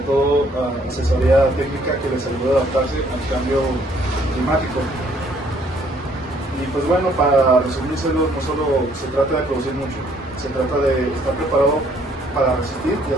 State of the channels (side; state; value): both; normal; correlation 0.64